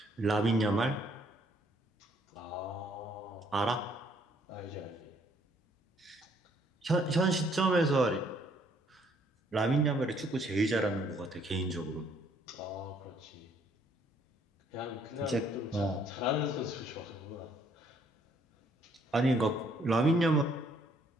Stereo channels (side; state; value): both; normal; correlation 0.65